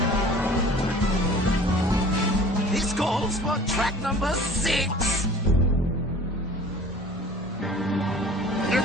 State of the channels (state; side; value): normal; both; correlation 0.46